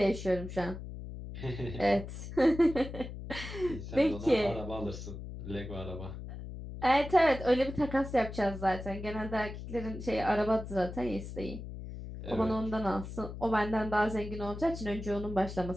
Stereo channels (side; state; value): left; noise; hum, 9 dB below the sound